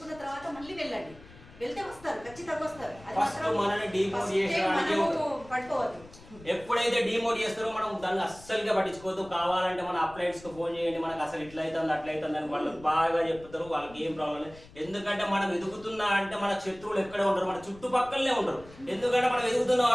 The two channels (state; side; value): noise; left; rumble, 21 dB below the sound